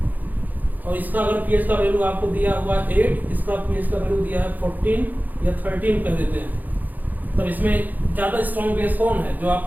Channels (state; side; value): late; left; 0.084 ms